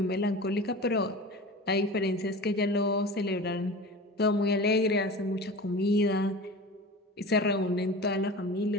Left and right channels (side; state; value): both; normal; correlation 0.34